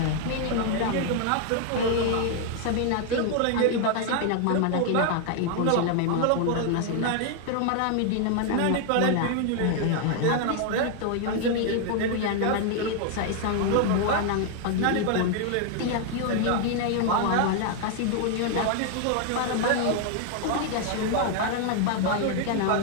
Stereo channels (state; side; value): different; both; correlation 0.00